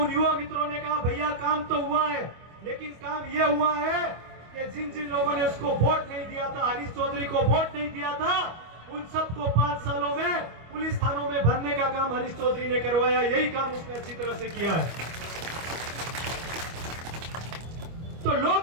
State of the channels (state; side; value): late; left; 25 ms